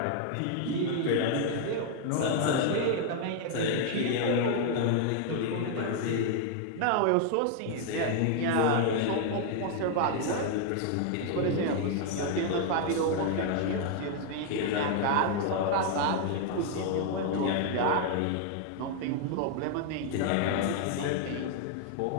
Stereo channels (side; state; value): both; different; correlation 0.00